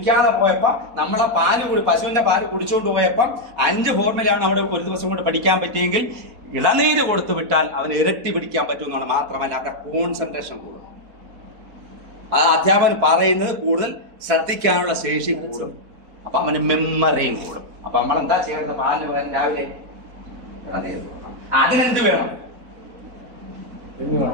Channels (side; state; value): left; late; 4.1 ms